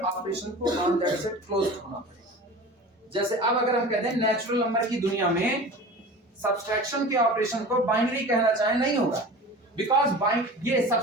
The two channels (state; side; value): normal; both; correlation 0.36